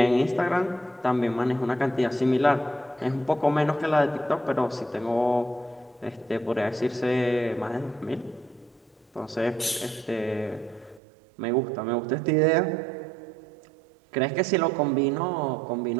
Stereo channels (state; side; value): drops out; left; at 11.0 s